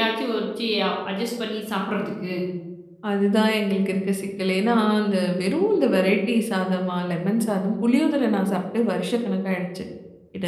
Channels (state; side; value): identical; both; correlation 1.00